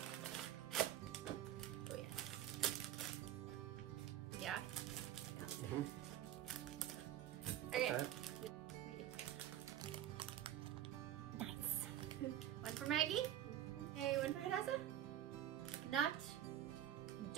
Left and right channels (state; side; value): quieter; left; 11.6 dB